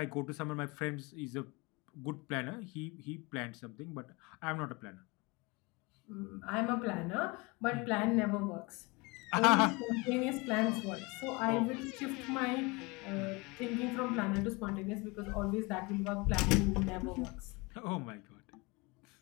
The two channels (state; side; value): quieter; right; 26.2 dB